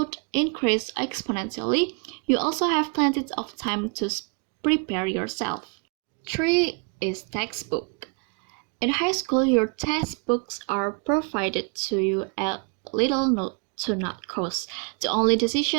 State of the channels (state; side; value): quieter; left; 36.0 dB